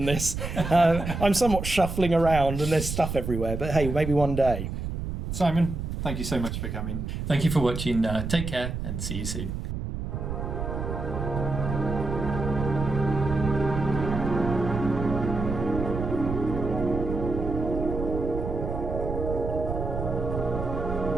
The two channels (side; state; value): right; noise; rumble, 4 dB below the sound